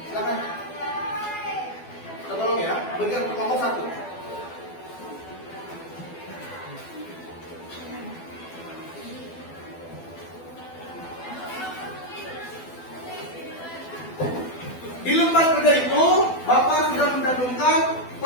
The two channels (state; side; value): late; right; 12 ms